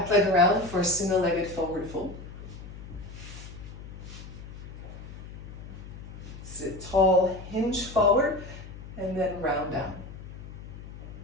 leg around for a single-legged forward fold. Sit tall, hinge forward, and then round down.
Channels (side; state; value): left; noise; hum, 13 dB below the sound